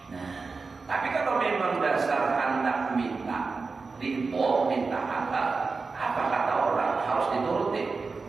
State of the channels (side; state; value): left; quieter; 4.3 dB